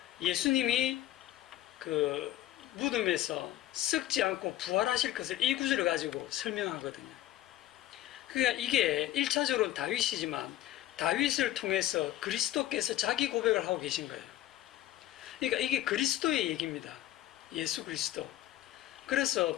예수님이 그 무덤에서 썩지 않고 부활하실 것을 이 구절을 가지고 설명하거든요. 그러니까 이게 1차적으로는 다윗이지만 다윗을 통해서 그리스도께서 자기 고백을 하고 계신 거예요. 그러니까 이게 그리스도의 얘기입니다. 예수 그리스도. 그래서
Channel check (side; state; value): right; quieter; 13.9 dB